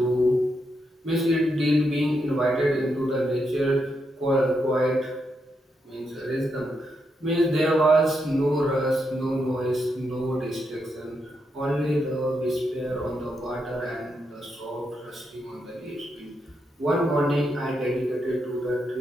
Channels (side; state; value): both; normal; correlation 0.82